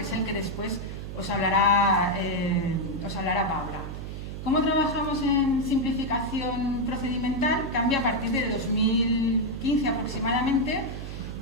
es el que después os hablará Paula. ¿Cómo trabajamos en simplificación procedimental? Cambia a partir de 2015 aproximadamente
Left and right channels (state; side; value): noise; right; hum, 8 dB below the sound